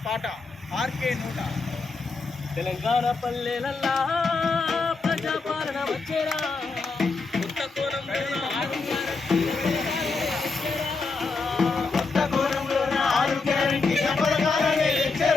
పాట ఆర్కే నోట. తెలంగాణ పల్లెలల్లా ప్రజాపాలన వచ్చేరా, కొత్త కోణంలో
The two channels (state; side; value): quieter; right; 4.1 dB